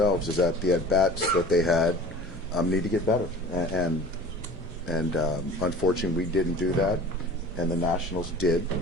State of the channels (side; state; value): both; normal; correlation 0.42